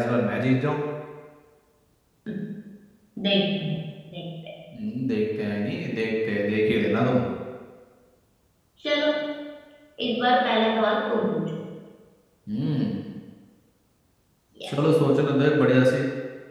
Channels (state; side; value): identical; both; correlation 1.00